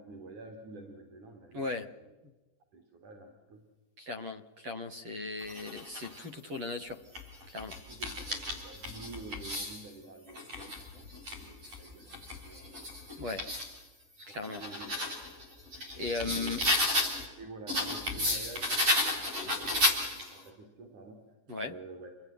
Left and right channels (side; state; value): left; late; 9.9 ms